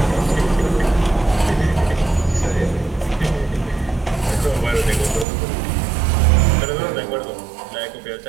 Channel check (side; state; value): left; drops out; at 5.2 s